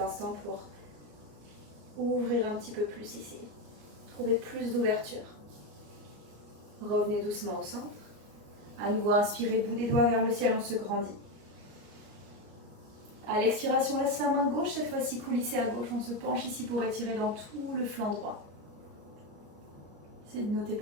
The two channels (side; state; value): left; late; 33 ms